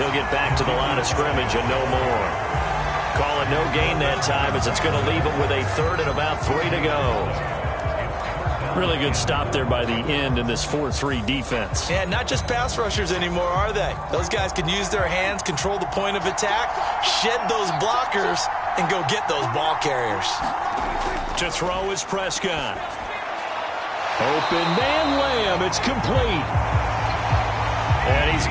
get back to the line of scrimmage and no more. Call it no gain that time as it's going to leave him with a 3rd and about 3 to go. Really good stop there by the end in this 4-3 defense. Yeah, not just pass rushers anymore, are they? Those guys can use their hands, control the point of attack, shed those blockers, and go get those ball carriers. To throw is Prescott. Open man Lamb. It's complete. And he's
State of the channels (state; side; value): identical; both; correlation 1.00